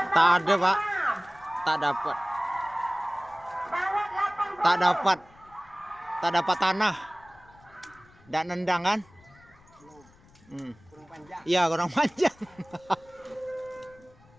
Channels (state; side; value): noise; left; rumble, 27 dB below the sound